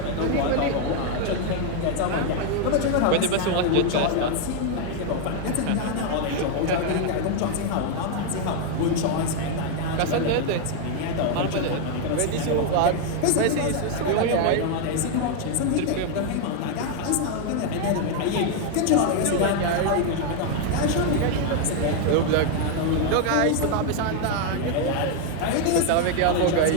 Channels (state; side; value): different; both; correlation 0.00